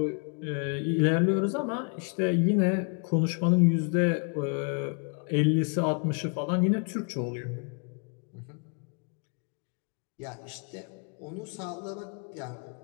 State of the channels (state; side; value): quieter; right; 39.0 dB